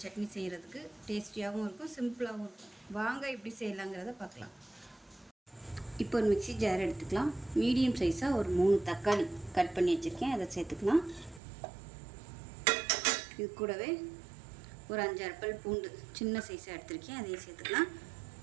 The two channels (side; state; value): left; drops out; at 11.4 s